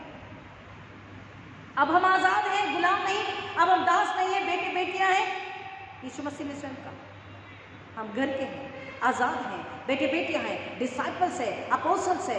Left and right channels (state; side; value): identical; both; correlation 1.00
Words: अब हम आजाद हैं, गुलाम नहीं, अब हम दास नहीं है, बेटे बेटियां हैं यीशु मसीह ने स्वयं कहा। हम घर के हैं, आजाद हैं, बेटे बेटियां हैं, डिसाइपल्स है, अपोस्टल्स